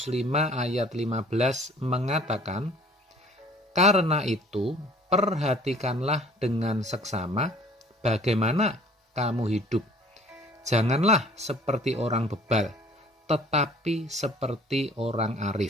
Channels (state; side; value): normal; both; correlation 0.52